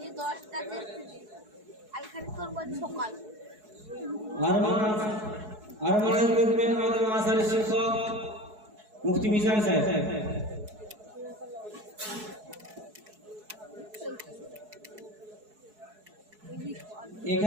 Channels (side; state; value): left; late; 4.7 ms